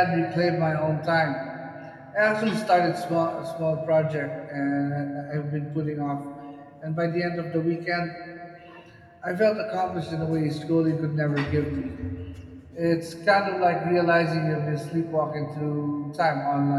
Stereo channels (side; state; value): both; identical; correlation 1.00